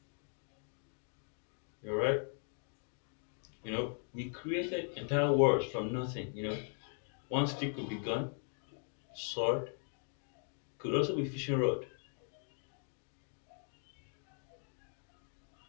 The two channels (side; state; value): right; silent; 52 dB below the other